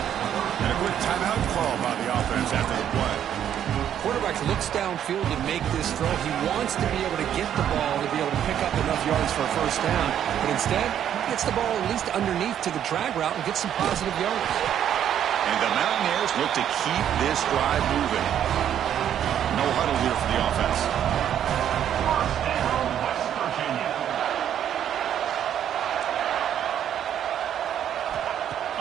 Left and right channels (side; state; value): left; quieter; 9.9 dB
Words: a quick timeout call by the offense after the play. Quarterback looks downfield to make this throw. He wants to be able to get the ball to be able to pick up enough yards for a 1st down. But instead, he gets the ball at least underneath to the drag route and gets some positive yards. And the Mountaineers look to keep this drive moving. No huddle here for the offense.